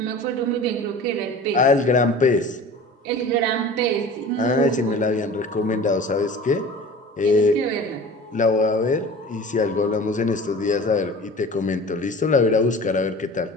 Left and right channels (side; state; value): both; normal; correlation 0.39